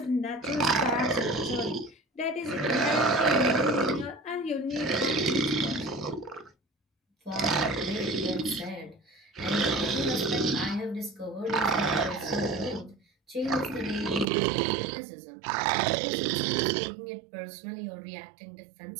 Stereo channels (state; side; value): drops out; left; at 14.2 s